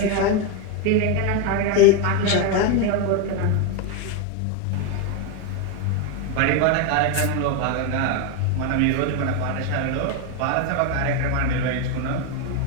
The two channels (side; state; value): both; different; correlation 0.02